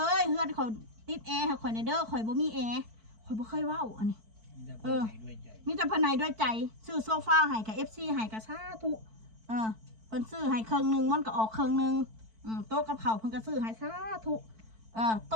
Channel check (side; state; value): left; late; 4.5 ms